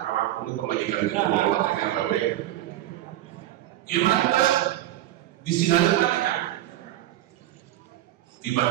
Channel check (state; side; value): quieter; left; 14.3 dB